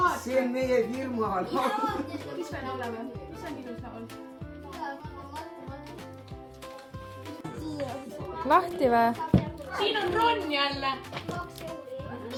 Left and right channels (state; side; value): identical; both; correlation 1.00